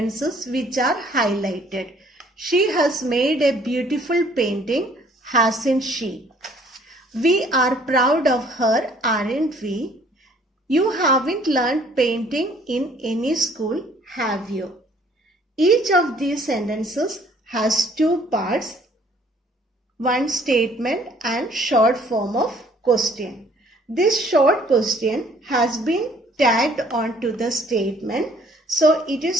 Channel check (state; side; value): normal; both; correlation 0.59